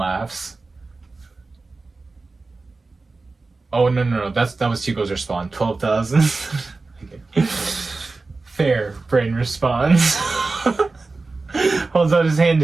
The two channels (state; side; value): quieter; left; 3.7 dB